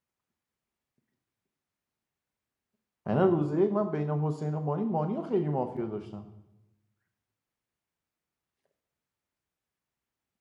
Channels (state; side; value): identical; both; correlation 1.00